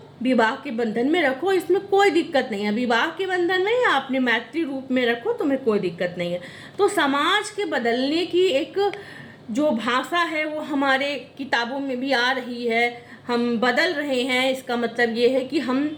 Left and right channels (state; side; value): identical; both; correlation 1.00